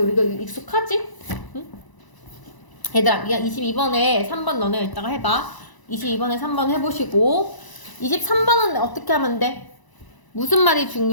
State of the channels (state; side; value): late; right; 1.0 ms